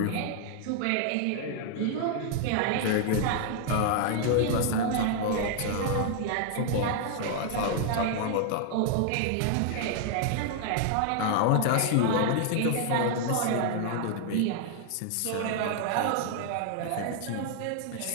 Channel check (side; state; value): both; different; correlation 0.00